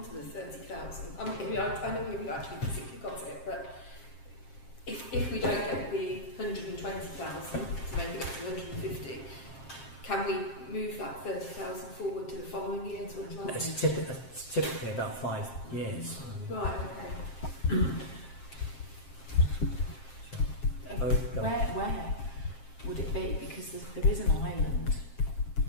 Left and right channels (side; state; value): right; late; 7.5 ms